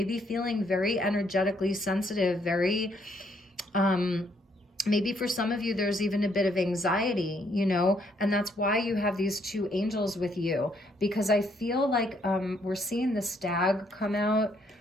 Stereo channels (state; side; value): normal; both; correlation 0.70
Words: be feeling very energetically sensitive, very, maybe for some of you, there's even a bit of anxiety, you know, and that's why you have these two angels with you, because I feel like we're seeing the stag come out.